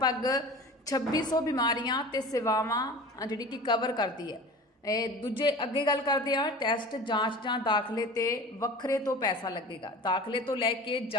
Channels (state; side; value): normal; both; correlation 0.37